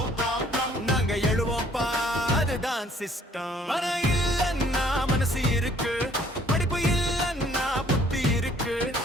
ப்ராப்ளம் நாங்க எழுவோம்ப்பா அதுதான் சிஸ்டம் பணம் இல்லன்னா மனசு இருக்கு படிப்பு இல்லன்னா புத்தி இருக்கு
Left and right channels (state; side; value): normal; both; correlation 0.60